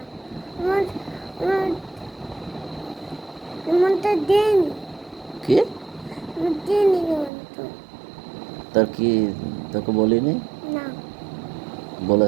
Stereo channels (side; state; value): left; drops out; at 7.3 s